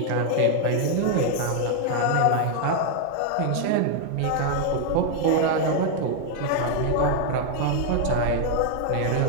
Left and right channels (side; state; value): both; different; correlation 0.00